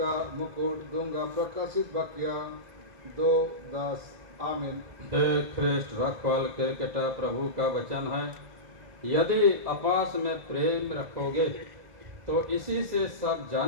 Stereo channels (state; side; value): late; left; 2.0 ms